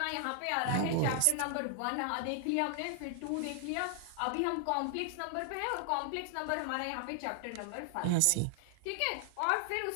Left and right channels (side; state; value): both; different; correlation 0.00